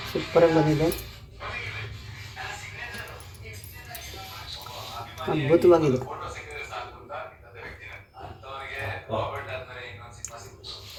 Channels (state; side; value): identical; both; correlation 1.00